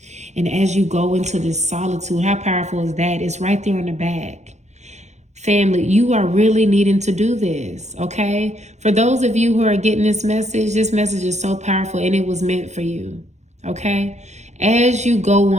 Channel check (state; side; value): late; left; 0.33 ms